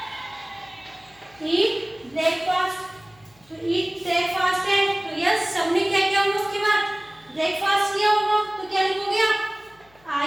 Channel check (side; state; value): left; noise; hum, 30 dB below the sound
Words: Eat breakfast. तो eat breakfast है, तो यस सबने क्या किया होगा? उसके बाद ब्रेकफास्ट किया होगा, तो क्या लिखोगे आप? I